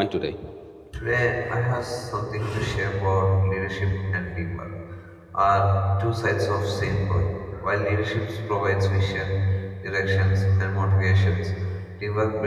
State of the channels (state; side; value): identical; both; correlation 1.00